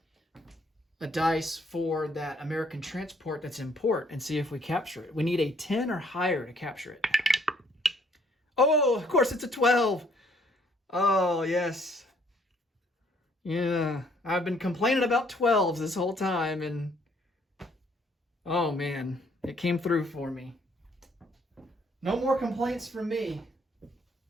a dice for that American transport that's in port and see if we capture it. We need a 10 or higher to capture it. Oh, of course it's a 12. Oh, yes. Yeah, I've been complaining about 12s this whole time, and oh man, it came through for me. No more complaints from me.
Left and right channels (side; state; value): both; normal; correlation 0.65